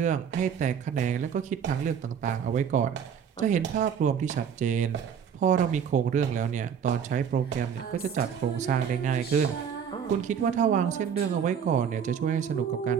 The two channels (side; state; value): left; quieter; 7.6 dB